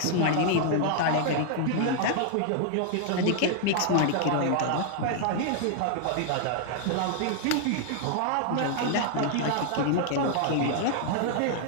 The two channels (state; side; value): different; both; correlation 0.00